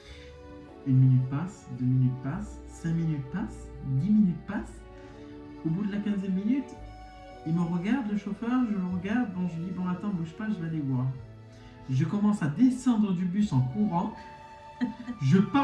1 minute passe, 2 minutes passent, 5 minutes passent, 10 minutes passent. Au bout de la 15e minute, il me regarde, le chauffeur, je le regarde. Bon, je lui dis, bon, attends, bouge pas, je vais aller voir. Je commence à descendre du bus en courant. Je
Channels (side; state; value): both; identical; correlation 1.00